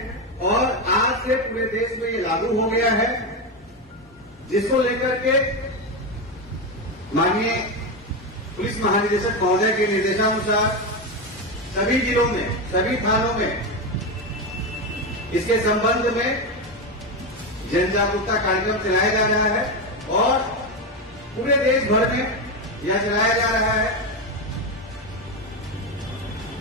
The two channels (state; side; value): normal; both; correlation 0.13